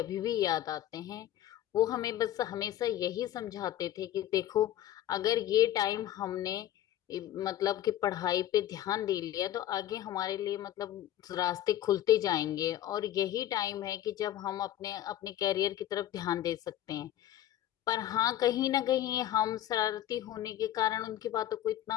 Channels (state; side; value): quieter; right; 12.4 dB